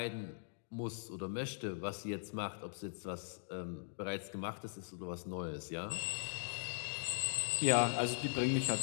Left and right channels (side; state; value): right; silent; digital silence